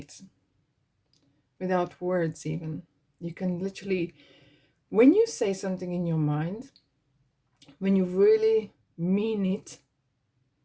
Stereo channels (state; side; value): identical; both; correlation 1.00